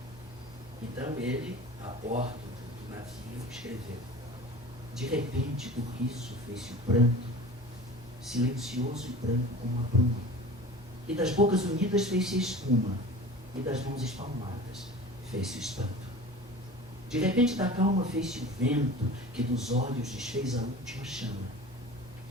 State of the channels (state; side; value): normal; both; correlation 0.39